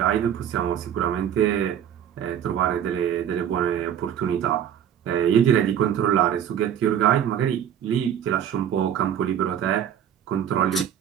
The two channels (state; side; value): quieter; left; 9.5 dB